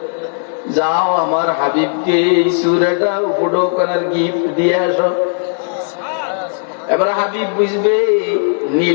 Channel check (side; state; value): right; silent; digital silence